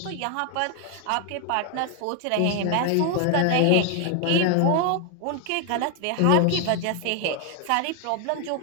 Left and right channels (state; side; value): different; both; correlation 0.00